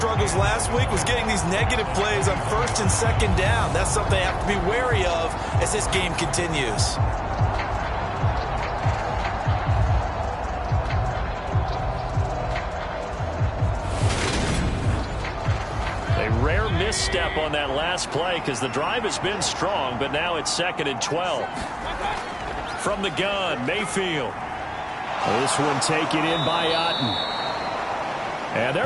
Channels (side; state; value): both; identical; correlation 1.00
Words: last week was getting these negative plays on 1st and 2nd down. That's something they have to be wary of as this game continues. A rare misstep on that last play because the drive has been strong, but now it's 2nd and 12. From the gun, Mayfield. This one taken in by Otten. And